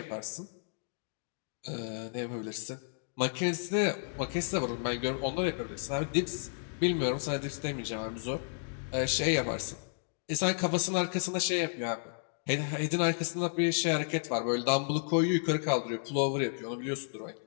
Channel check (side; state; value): right; silent; digital silence